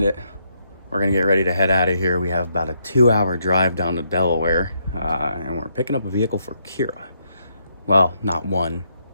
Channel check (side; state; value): both; inverted; correlation -0.77